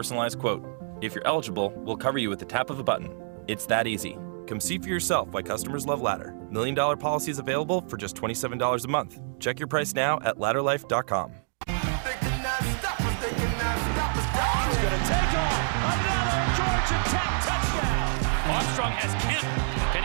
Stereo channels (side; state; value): left; silent; digital silence